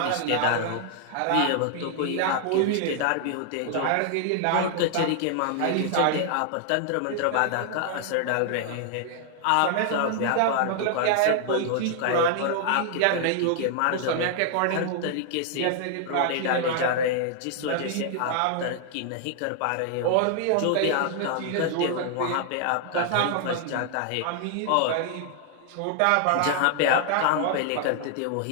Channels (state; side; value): different; both; correlation 0.00